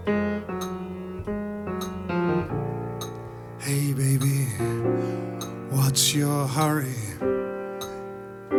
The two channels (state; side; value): identical; both; correlation 1.00